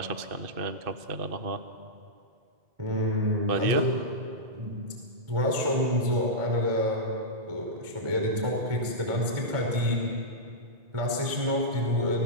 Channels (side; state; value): left; late; 1.4 ms